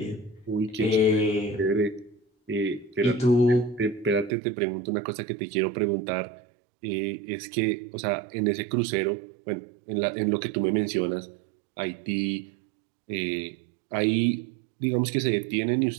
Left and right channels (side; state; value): left; drops out; at 4.3 s